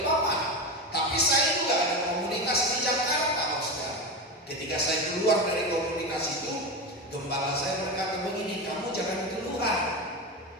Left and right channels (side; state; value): both; normal; correlation 0.18